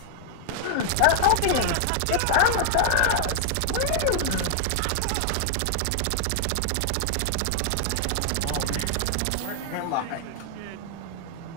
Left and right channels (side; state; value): both; different; correlation 0.00